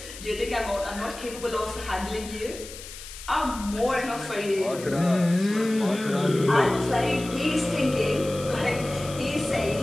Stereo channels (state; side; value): noise; left; hiss, 13 dB below the sound